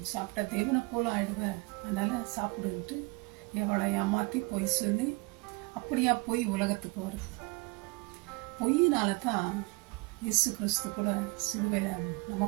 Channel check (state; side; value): quieter; left; 27.2 dB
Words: சாப்பிட்டா தேவனை போல ஆயிடுவேன், அதனால சாப்பிடுன்ட்டு ஏவாளை ஏமாற்றி பொய் சொல்லி அப்படியா பொய் உலகத்துக்கு வருது. பொய்யினால தான் இயேசு கிறிஸ்து கூட சிலுவையில்